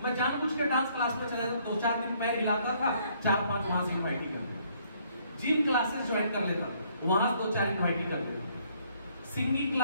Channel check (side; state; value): both; inverted; correlation -0.66